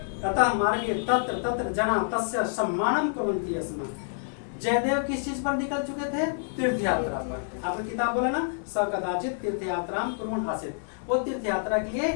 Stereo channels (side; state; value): right; silent; 60 dB below the other